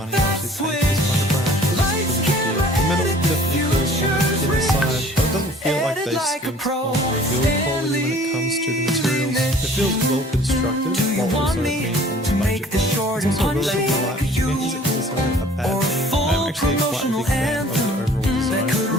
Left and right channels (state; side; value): normal; both; correlation 0.51